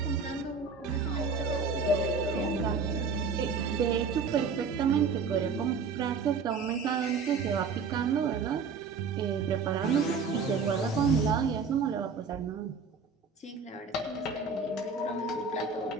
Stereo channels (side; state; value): left; quieter; 5.0 dB